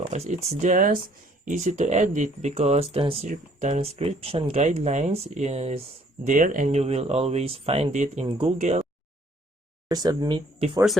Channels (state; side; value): normal; both; correlation 0.61